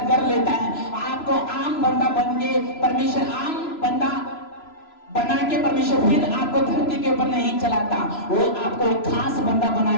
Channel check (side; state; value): right; late; 3.0 ms